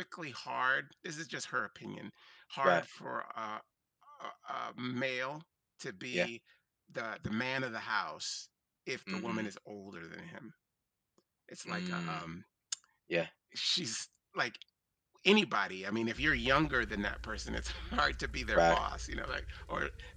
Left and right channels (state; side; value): identical; both; correlation 1.00